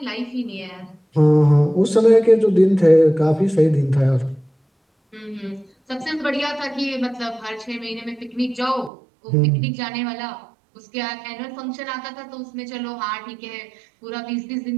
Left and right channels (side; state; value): left; drops out; at 8.9 s